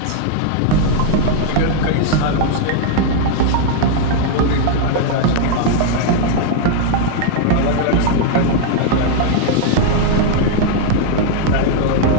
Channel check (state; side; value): different; both; correlation 0.00